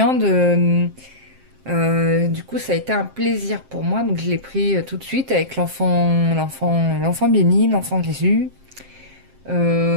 Du coup, ça a été un plaisir pour moi. Donc, je l'ai pris tout de suite avec l'enfant béni, l'enfant Jésus.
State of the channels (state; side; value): late; left; 7.6 ms